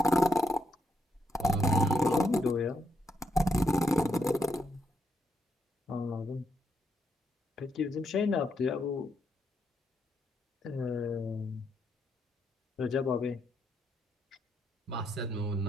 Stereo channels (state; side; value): normal; both; correlation 0.79